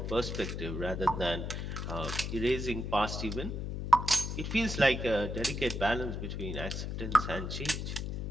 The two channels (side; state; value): left; noise; hum, 4 dB below the sound